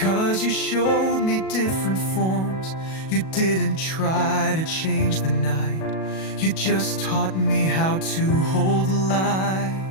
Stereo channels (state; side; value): late; right; 37 ms